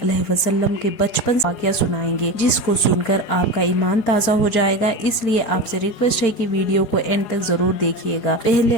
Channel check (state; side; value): late; right; 4.9 ms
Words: علیہ وسلم کے بچپن واقعہ سنائیں گے، جس کو سن کر آپ کا ایمان تازہ ہو جائے گا۔ اس لیے آپ سے ریکویسٹ ہے کہ ویڈیو کو اینڈ تک ضرور دیکھیے گا۔